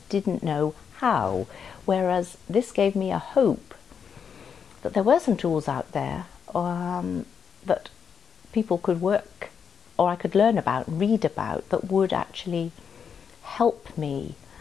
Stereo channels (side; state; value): right; quieter; 6.9 dB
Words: didn't know how. Whereas this gave me a hope that there were some tools out there that people could work, or I could learn about, read about, that would actually help me.